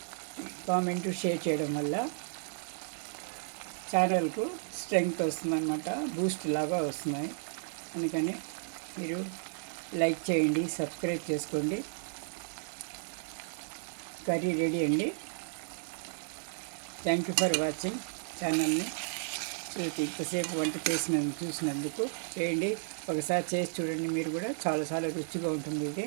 కామెంటు షేర్ చేయడం వల్ల ఛానల్కు స్ట్రెంగ్త్ వస్తుందన్నమాట, బూస్ట్ లాగా వస్తున్నాయి. అందుకని మీరు లైక్ చేయండి, సబ్స్క్రైబ్ చేసుకోండి. కర్రీ రెడీ అండి. థ్యాంక్ యూ ఫర్ వాచింగ్ ఛానల్ని. ఇంతసేపు వంట చూసినందుకు చేయండి. ఒకసారి చేసి చూడండి, మీరు కూడా చాలా రుచిగా ఉంటుంది ఇది.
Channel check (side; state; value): left; silent; digital silence